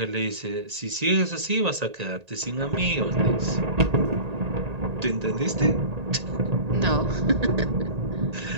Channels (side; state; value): left; late; 1.8 ms